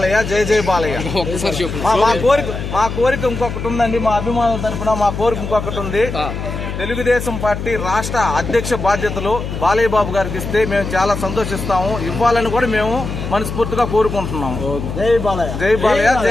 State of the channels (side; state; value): left; noise; hum, 6 dB below the sound